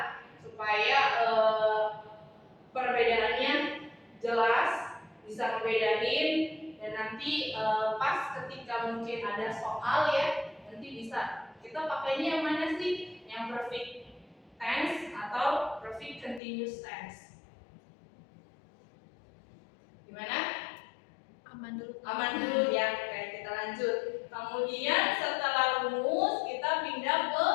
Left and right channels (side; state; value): right; drops out; at 16.4 s